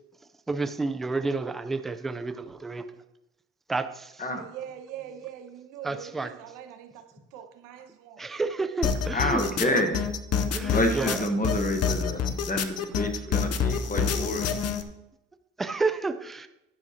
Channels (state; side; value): normal; both; correlation 0.51